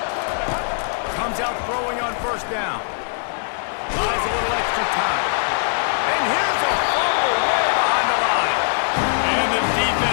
Comes out throwing on first down. Buys a little extra time. And here's a fumble way behind the line. And the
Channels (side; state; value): right; silent; 62 dB below the other